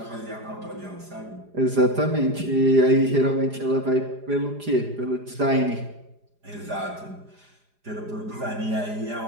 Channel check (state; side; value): late; left; 4.9 ms